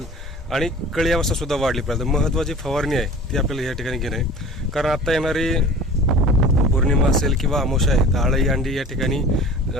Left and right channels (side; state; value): both; normal; correlation 0.42